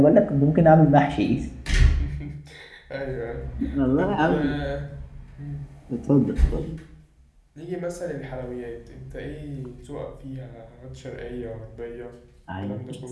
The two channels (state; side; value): identical; both; correlation 1.00